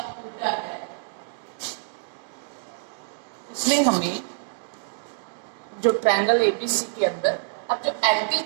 है, उसमें हमें जो ट्रायंगल एबीसी के अंदर अब जो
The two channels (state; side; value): silent; left; digital silence